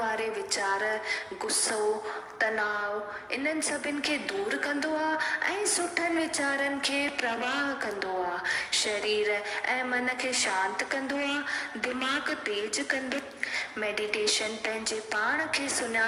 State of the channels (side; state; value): both; identical; correlation 1.00